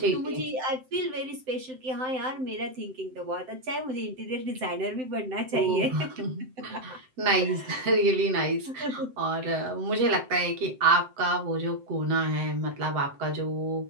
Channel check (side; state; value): left; late; 7.7 ms